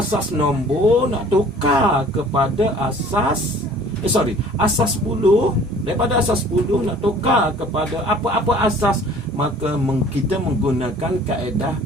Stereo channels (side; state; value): both; normal; correlation 0.50